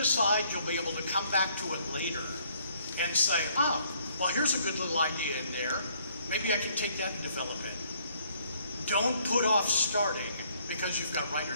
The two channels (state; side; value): inverted; both; correlation -0.65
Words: you'll be able to come back to it later and say, well, here's a good little idea in there. Maybe I can take that and develop it. Don't put off starting because you've got